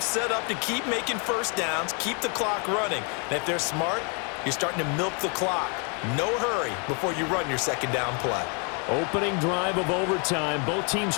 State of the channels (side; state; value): right; quieter; 36.7 dB